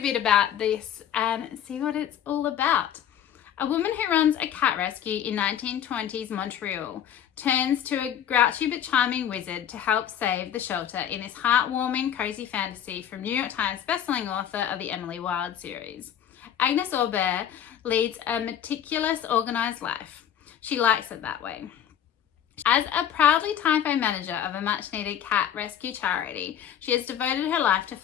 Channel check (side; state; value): right; quieter; 9.9 dB